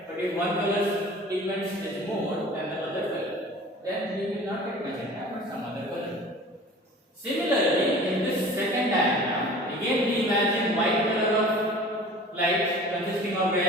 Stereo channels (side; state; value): both; normal; correlation 0.43